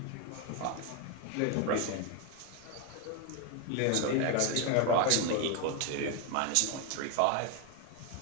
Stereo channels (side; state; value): both; different; correlation 0.01